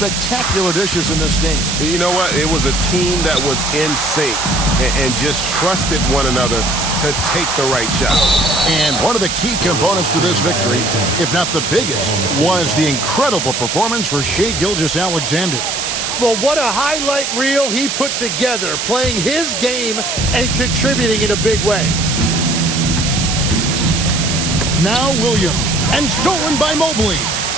dishes in this game. You know what? It was a team that was in sync and just trusted one another to take the right shot. And one of the key components to this victory, if not the biggest, was the incredible performance for Shai Gilgeous-Alexander. Well, what a highlight reel he put together, playing his game and contributing in a big way. Now Williams, and stolen by Mobley.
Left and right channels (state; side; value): noise; right; hiss, 2 dB below the sound